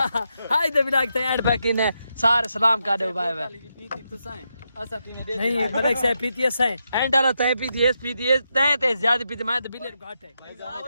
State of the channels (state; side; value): inverted; both; correlation -0.84